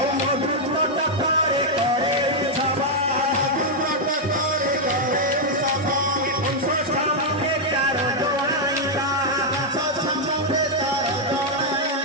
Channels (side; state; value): both; normal; correlation -0.02